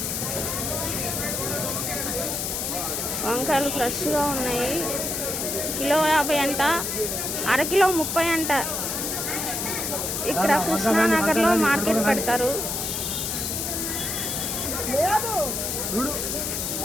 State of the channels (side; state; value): left; noise; hiss, 2 dB below the sound